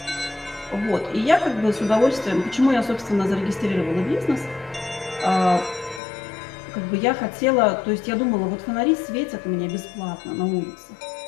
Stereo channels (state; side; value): drops out; right; at 6.0 s